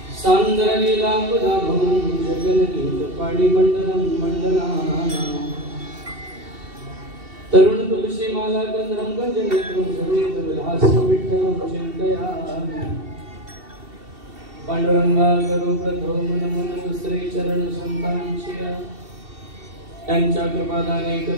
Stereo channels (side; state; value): left; late; 2.7 ms